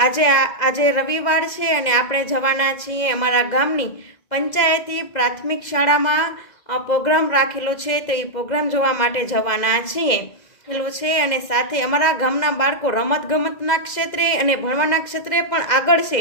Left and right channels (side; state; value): right; late; 2.0 ms